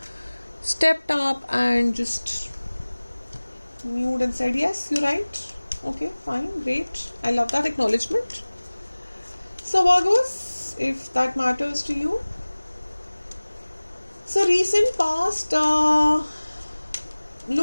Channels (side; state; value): both; inverted; correlation -1.00